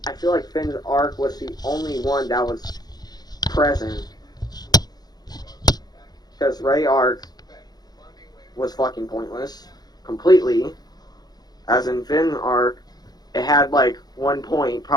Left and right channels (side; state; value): right; late; 0.19 ms